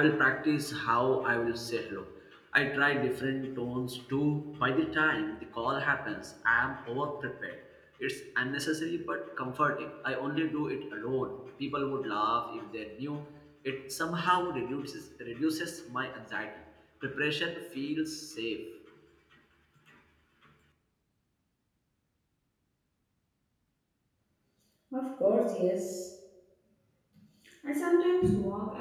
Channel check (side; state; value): both; identical; correlation 1.00